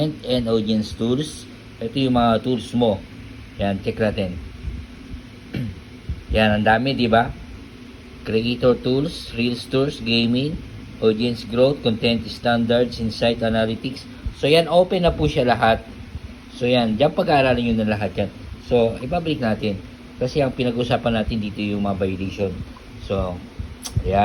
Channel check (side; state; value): both; identical; correlation 1.00